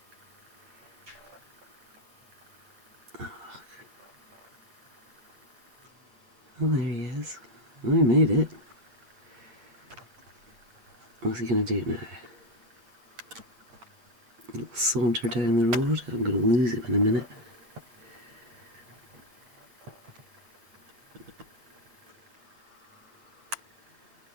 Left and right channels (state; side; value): late; left; 8.9 ms